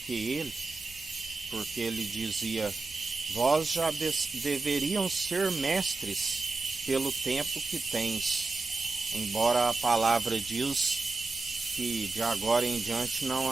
ele, porque ele dizia: vós já deveriam ser mestres pelo tempo que tens, embora a palavra diz que de agora em diante não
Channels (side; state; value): left; quieter; 3.7 dB